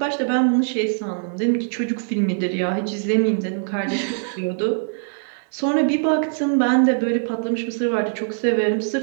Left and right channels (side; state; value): left; silent; digital silence